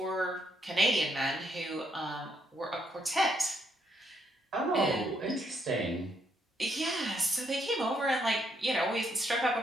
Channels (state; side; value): normal; both; correlation 0.74